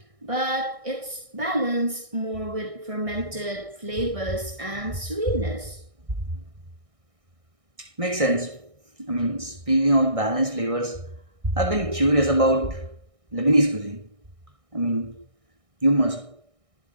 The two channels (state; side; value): late; left; 1.6 ms